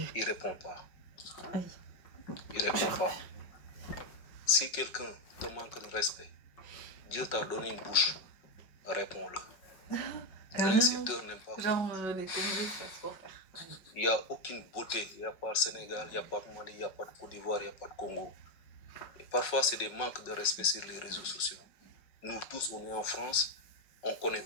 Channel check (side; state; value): right; late; 5.4 ms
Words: ne répondent pas. Ils ne répondent pas. Si quelqu'un te manque de respect, Dieu t'a donné une bouche, réponds-le. L'insulteur n'aime pas. Genre, les Congolais, ça se faire. Il n'y a aucune beauté. Il n'y a pas de Sénégal, il n'y a pas de Mali, il n'y a pas de Côte d'Ivoire, il n'y a pas de Congo. Et parfois, c'est des manques de respect sur les réseaux sociaux. Nous tous, on est en France. On ne connaît